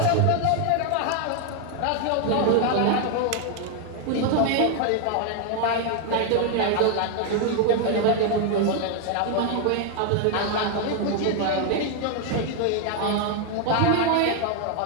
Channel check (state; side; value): different; both; correlation 0.00